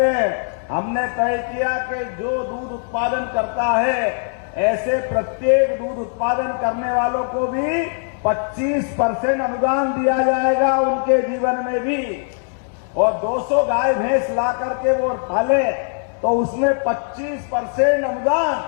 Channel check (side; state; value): right; silent; 58 dB below the other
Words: हैं, हमने तय किया कि जो दूध उत्पादन करता है ऐसे प्रत्येक दूध उत्पादन करने वालों को भी 25% अनुदान दिया जाएगा उनके जीवन में भी। और 200 गाय भैंस ला करके वो पाले तो उसमें 25%